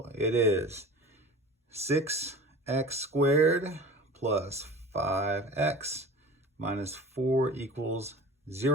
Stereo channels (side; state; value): both; normal; correlation 0.38